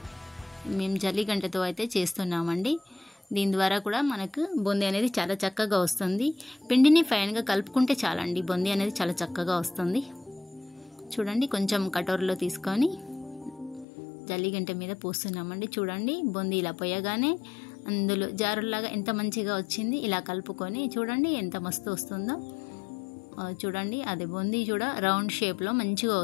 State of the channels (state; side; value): drops out; right; at 13.9 s